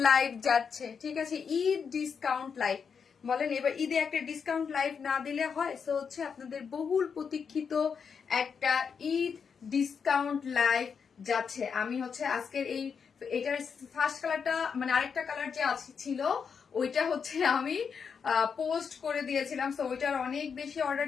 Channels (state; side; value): quieter; right; 6.3 dB